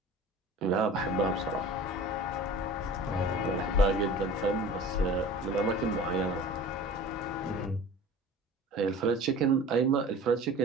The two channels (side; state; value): both; normal; correlation 0.41